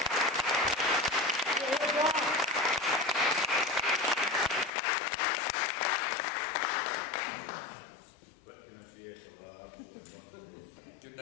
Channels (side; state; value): right; drops out; at 4.7 s